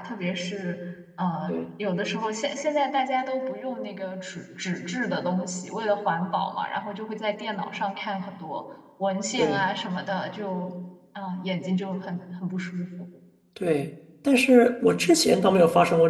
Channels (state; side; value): identical; both; correlation 1.00